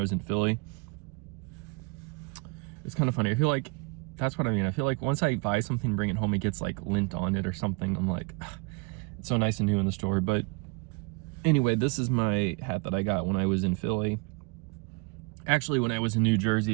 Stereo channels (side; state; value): left; quieter; 30.0 dB